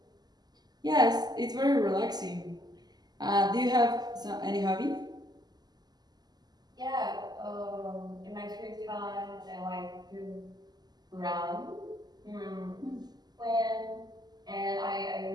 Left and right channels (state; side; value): late; left; 0.20 ms